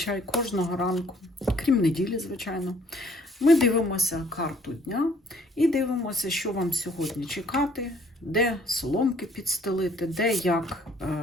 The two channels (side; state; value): both; normal; correlation 0.61